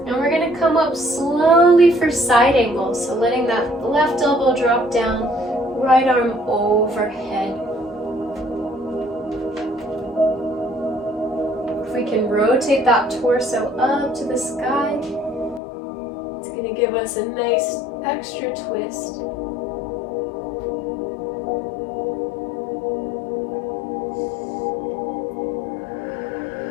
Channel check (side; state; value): right; drops out; at 15.6 s